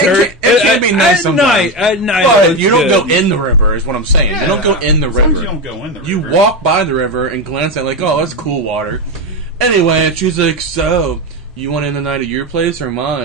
that. It can be nice at sometimes. At night, But it's you don't good. go in the river, is what I'm saying. You don't go in the Sometimes river. you don't go in the river. You walk by the river and glance at like, oh, that's cool water. Anyway, and she's like, so, you want to end the night at your place or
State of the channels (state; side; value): normal; both; correlation 0.15